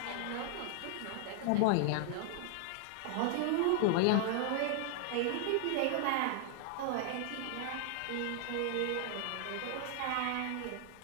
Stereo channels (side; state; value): both; different; correlation 0.00